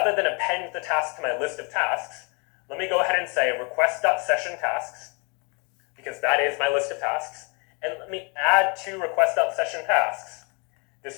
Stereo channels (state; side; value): quieter; right; 32.7 dB